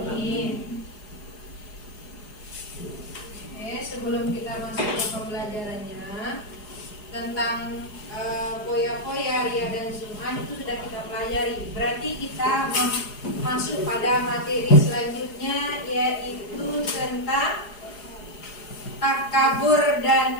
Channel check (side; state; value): right; late; 4.8 ms